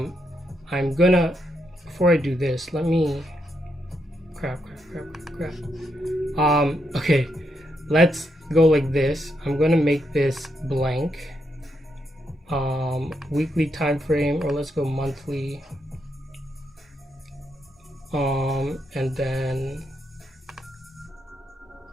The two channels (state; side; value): normal; both; correlation 0.80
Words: gonna, before I do this, let me crap. Okay, let's go like this. I'm gonna make this blank. Weekly time frame, or let's go monthly. And then